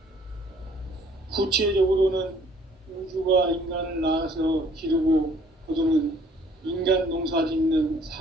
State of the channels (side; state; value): both; normal; correlation 0.59